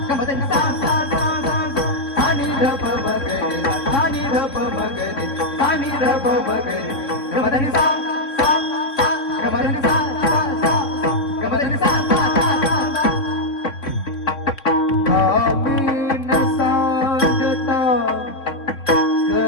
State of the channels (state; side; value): late; right; 3.7 ms